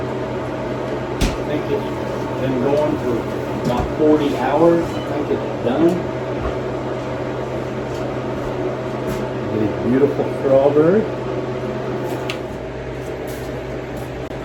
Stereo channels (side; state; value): both; identical; correlation 1.00